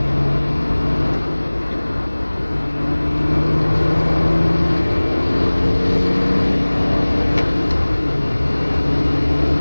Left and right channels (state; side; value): inverted; both; correlation -1.00